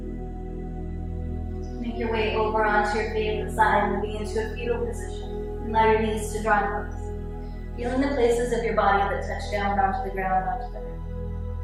Make your way over onto your favorite side, moving into a fetal position. And allow your knees to draw close. Feeling the places of your body that touch down onto the ground, onto the earth.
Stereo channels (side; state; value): both; identical; correlation 1.00